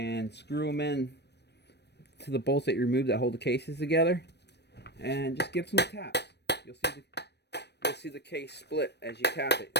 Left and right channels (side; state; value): right; late; 0.49 ms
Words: screw them in to the bolts that you remove that hold the cases together, and just give some taps. You'll see the case split as you tap it.